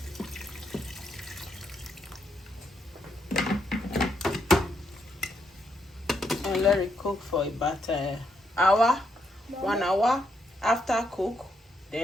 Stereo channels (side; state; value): both; normal; correlation 0.78